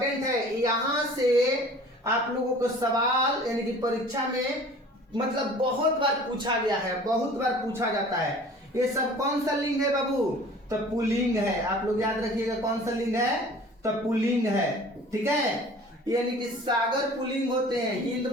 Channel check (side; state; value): both; normal; correlation 0.46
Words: है, यहां से आप लोगों को सवाल यानी कि परीक्षा में मतलब बहुत बार पूछा गया है, बहुत बार पूछा जाता है। ये सब कौन सा लिंग है बाबू? तो पुल्लिंग है। आप लोग याद रखिएगा कौन सा लिंग है? तो पुल्लिंग है। ठीक है, यानी कि सागर पुल्लिंग होते हैं, हिंद